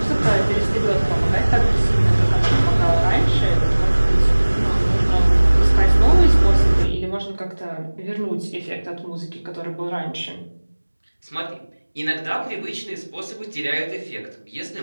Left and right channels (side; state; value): both; inverted; correlation -1.00